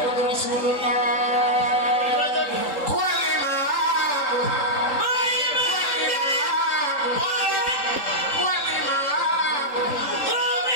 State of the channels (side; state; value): right; late; 3.8 ms